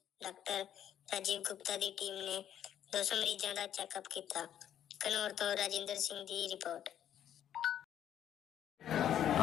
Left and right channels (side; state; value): right; quieter; 10.4 dB